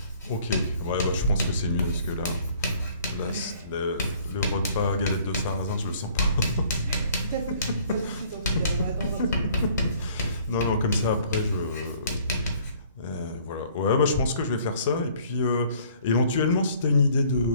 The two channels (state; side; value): inverted; both; correlation -0.57